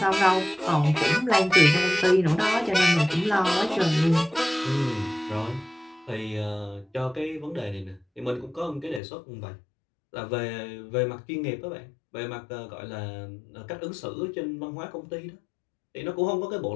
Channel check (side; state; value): right; drops out; at 9.0 s